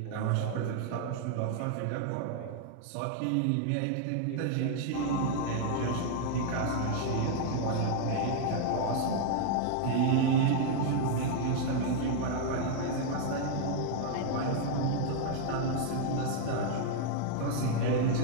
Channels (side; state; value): both; different; correlation 0.00